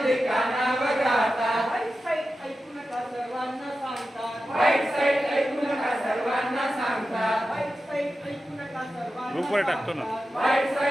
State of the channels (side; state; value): both; normal; correlation 0.92